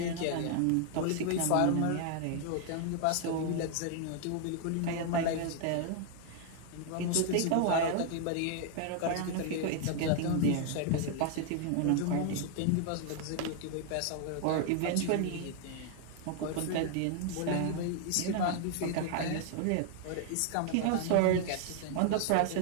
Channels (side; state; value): both; different; correlation 0.00